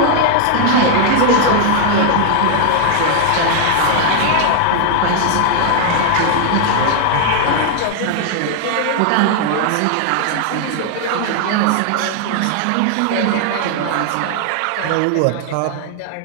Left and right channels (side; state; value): both; different; correlation 0.00